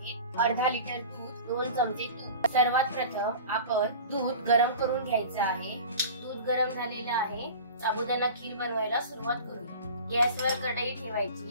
अर्धा लिटर दूध, 2 चमचे तूप। सर्वात प्रथम आपण दूध गरम करून घ्यायचं आहे। दूध गरम झालेलं आहे। साबुदाणा खीर बनवायला सुरुवात करू। गॅसवर कढई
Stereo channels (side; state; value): both; inverted; correlation -0.37